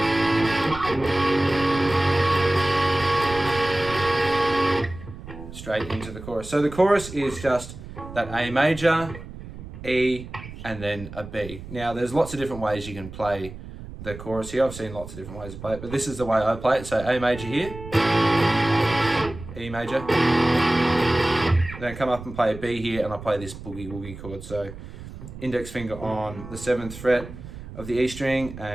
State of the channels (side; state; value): right; noise; rumble, 13 dB below the sound